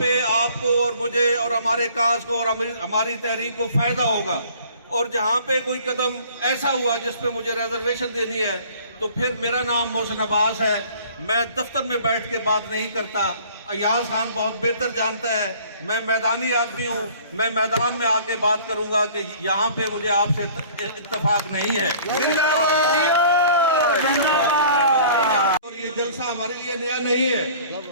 آپ کو اور مجھے اور ہمارے کاز کو اور ہماری تحریک کو فائدہ ہوگا، اور جہاں پہ کوئی قدم ایسا ہوا جس پہ مجھے ریزرویشن دینی ہے تو پھر میرا نام محسن عباس ہے، میں دفتر میں بیٹھ کے بات نہیں کرتا۔ ایاز خان بہت بہتر جانتا ہے میں میدانی آدمی ہوں، میں میدان میں آ کے بات کروں گا کہ یہاں پہ مجھے آپ سے اتفاق نہیں ہے۔ اور یہ جلسہ ہمارے لیے نیا نہیں ہے۔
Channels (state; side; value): inverted; both; correlation -0.51